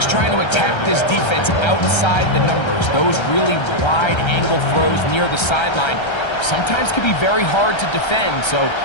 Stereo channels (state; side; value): late; right; 1.3 ms